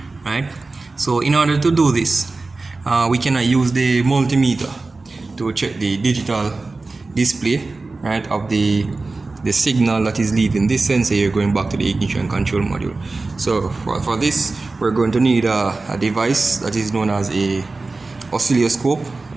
right? So in order to do this, we cannot use the multimeter to check the digital display, right, of the signal that is leaving this sensor here going back to the ignition control module. So for this, we're going to need a device that is known as a oscilloscope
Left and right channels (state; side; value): quieter; left; 3.5 dB